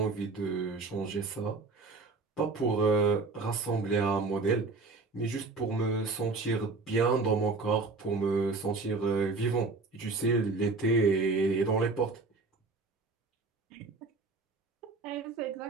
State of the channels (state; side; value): quieter; left; 3.9 dB